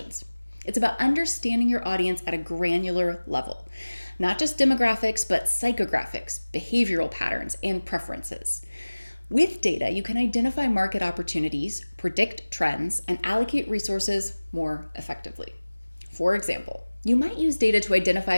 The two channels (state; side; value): inverted; both; correlation -1.00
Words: It's about understanding your audience at a granular level. Not just demographics, but psychographics, behavioral patterns, and preferences. With data, you can identify market opportunities, predict trends, and allocate resources more effectively. For example, you might use data to